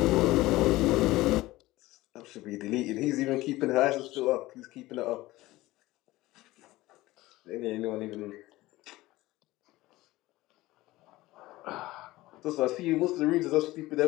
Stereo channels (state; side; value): quieter; right; 18.3 dB